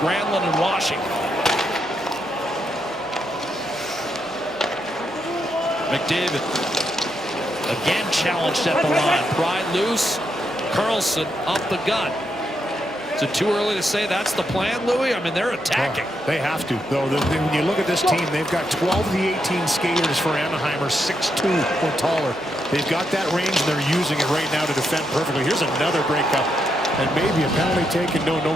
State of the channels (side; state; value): both; normal; correlation 0.81